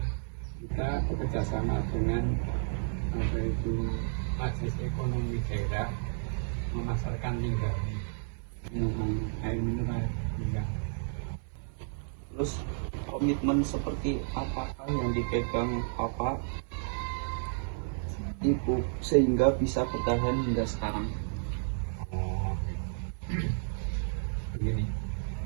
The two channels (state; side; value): silent; left; 57 dB below the other